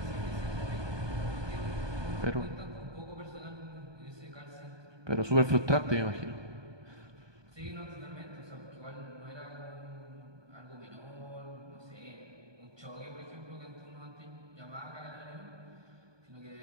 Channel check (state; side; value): late; left; 1.2 ms